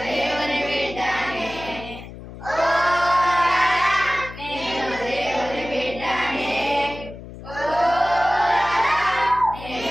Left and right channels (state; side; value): noise; left; hum, 14 dB below the sound